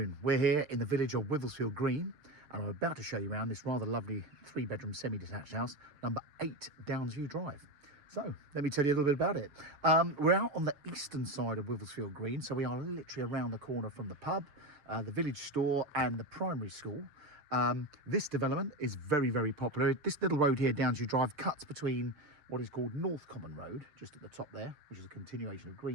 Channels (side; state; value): left; late; 6.6 ms